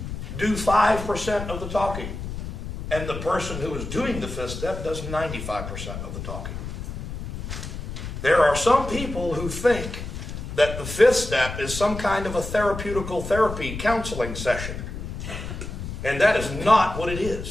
do 5% of the talking. And the person who is doing the fifth step does 95% of the talking. There are some people who think that the fifth step is some kind of a therapeutical therapy counseling session. And that is not what it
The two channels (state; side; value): noise; left; rumble, 7 dB below the sound